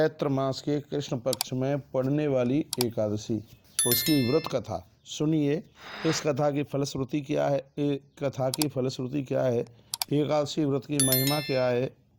मास के कृष्ण पक्ष में पड़ने वाली एकादशी, उसकी व्रत कथा। सुनिए इस कथा की फलश्रुति क्या है, एकादशी व्रत की महिमा क्या है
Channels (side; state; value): both; identical; correlation 1.00